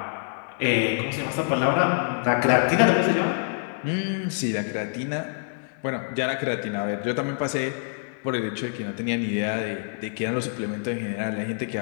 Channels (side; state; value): right; silent; digital silence